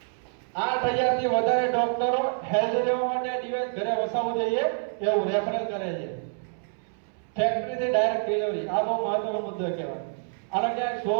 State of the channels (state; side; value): silent; left; 60 dB below the other